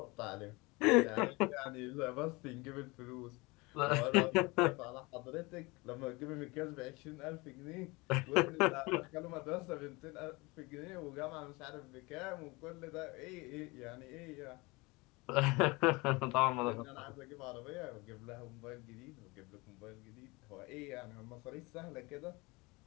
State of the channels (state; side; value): quieter; right; 24.7 dB